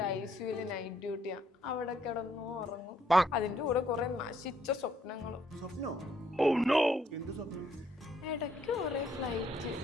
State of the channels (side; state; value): both; normal; correlation 0.69